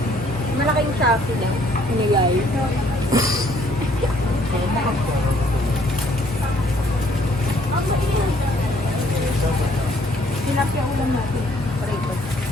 Malaking Shopee lang. Hinigay. Tilapia ulam natin. Parito.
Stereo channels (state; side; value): noise; right; hum, 17 dB below the sound